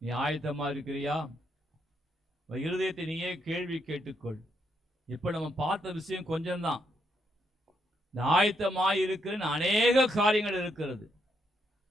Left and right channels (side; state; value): both; normal; correlation 0.77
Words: நீ ஆயத்தமா இருக்கிறியா? இருதயத்தை நீயே கேள்வி கேட்டுக்கொள். இப்ப நம்ம பார்த்த விஷயம் கொஞ்சம்தான். இந்த ஆயத்தமாய் இருக்கிற அநேக காரியங்கள் இருக்கிறது,